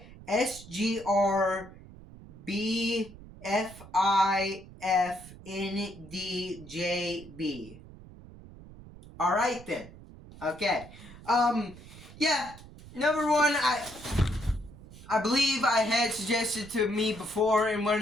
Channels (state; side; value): noise; right; rumble, 18 dB below the sound